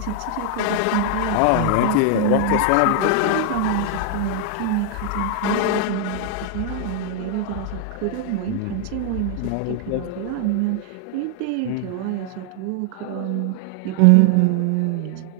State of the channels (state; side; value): different; both; correlation 0.00